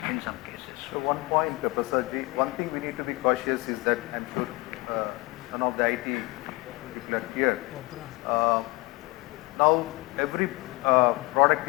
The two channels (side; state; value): right; quieter; 23.8 dB